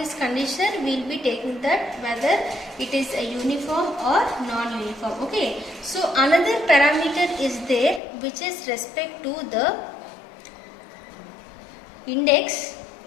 condition, we will be taking that whether it is a uniform or non-uniform. Okay, so another parameter is there which is respect to the index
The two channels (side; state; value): right; drops out; at 8.0 s